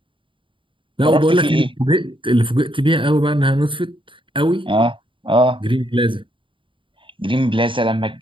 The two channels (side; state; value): left; late; 0.25 ms